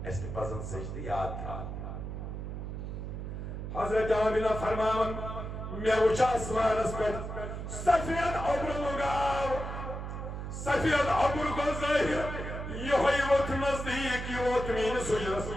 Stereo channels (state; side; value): noise; right; hum, 6 dB below the sound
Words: ایسے پسند سجدہ یاد تھا حضرت آمینہ فرمان میں اچھا اسمان اس پر سفید عبر لگاو سفید عبر کو ظاہر یہ ہوئی وقت نزدیک یہ وقت مین سجرس